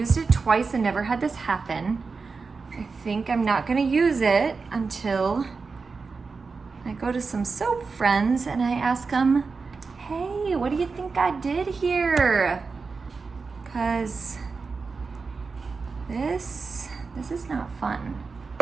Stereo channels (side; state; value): left; quieter; 4.6 dB